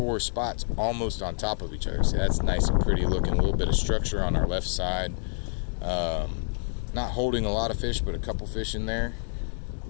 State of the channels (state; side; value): silent; right; digital silence